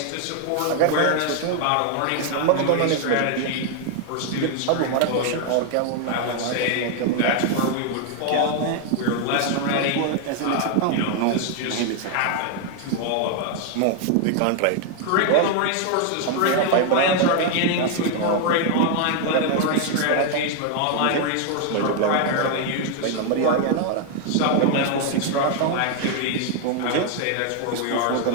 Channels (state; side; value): different; both; correlation 0.00